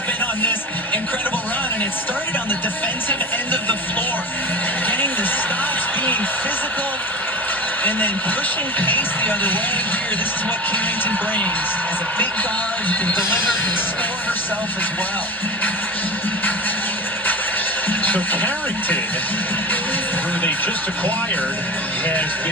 And then pushing pace the other way here. This is what Carrington brings. As a big guard who can deliver, can score herself as well. So Carrington, who they just acquired, has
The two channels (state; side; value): normal; both; correlation 0.31